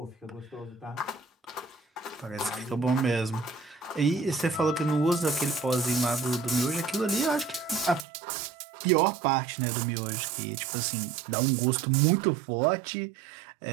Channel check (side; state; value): left; drops out; at 8.1 s